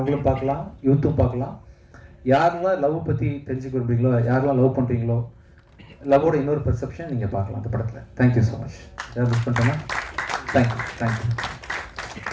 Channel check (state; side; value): identical; both; correlation 1.00